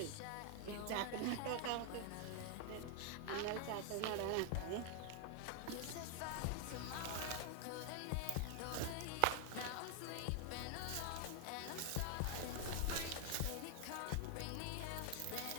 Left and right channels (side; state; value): both; different; correlation 0.00